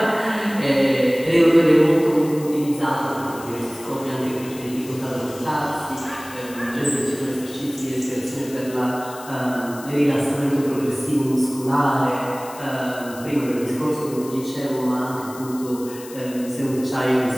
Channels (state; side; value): noise; left; hiss, 17 dB below the sound